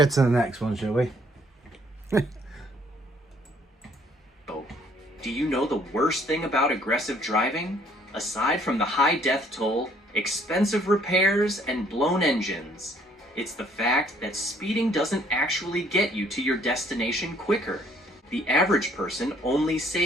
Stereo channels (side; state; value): both; normal; correlation 0.62